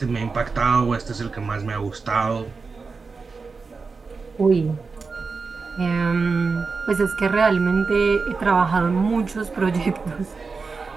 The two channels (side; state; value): left; quieter; 4.6 dB